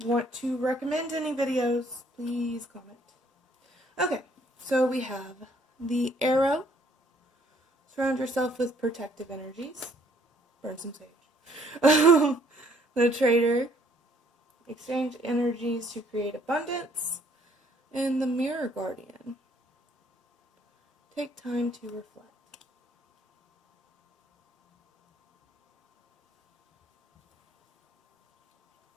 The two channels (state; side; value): normal; both; correlation 0.64